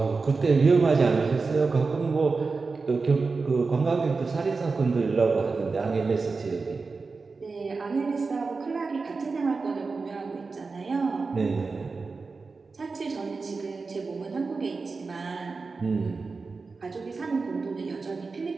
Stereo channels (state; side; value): quieter; left; 4.3 dB